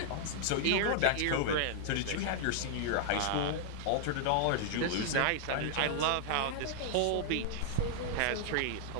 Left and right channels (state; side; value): different; both; correlation -0.01